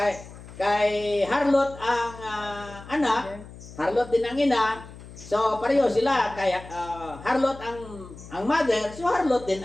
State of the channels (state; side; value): noise; left; hum, 17 dB below the sound